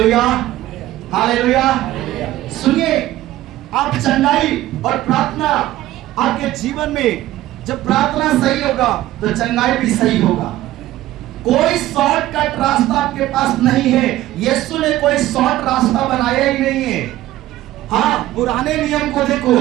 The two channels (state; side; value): quieter; left; 15.2 dB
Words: hallelujah. सुनिए, आप चंगाई और प्रार्थना आपके जीवन में, जब प्रार्थना सही होगा तो चंगाई भी सही होगा। कोई शॉर्टकट रास्ता आपके पास नहीं है। यीशु ने कोई शॉर्ट रास्ता बनाया ही नहीं है। हाँ, पुराने नियम को देखो,